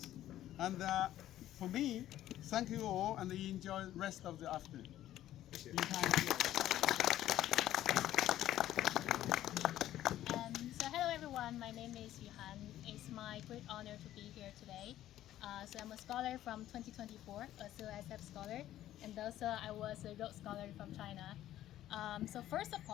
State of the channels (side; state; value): right; quieter; 13.1 dB